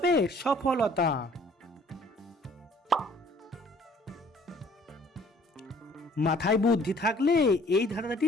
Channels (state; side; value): normal; both; correlation 0.57